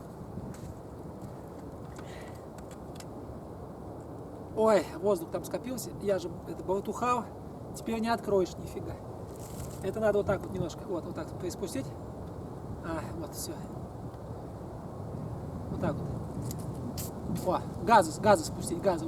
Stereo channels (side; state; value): both; identical; correlation 1.00